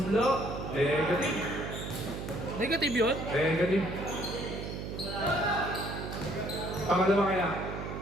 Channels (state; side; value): noise; right; hum, 6 dB below the sound